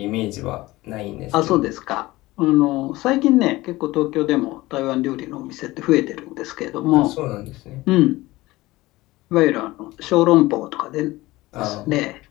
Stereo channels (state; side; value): quieter; right; 19.1 dB